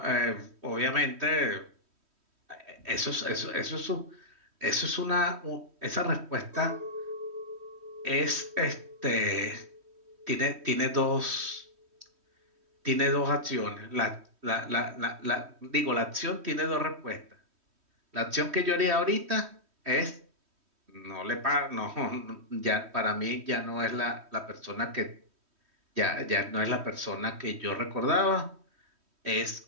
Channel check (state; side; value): late; left; 3.1 ms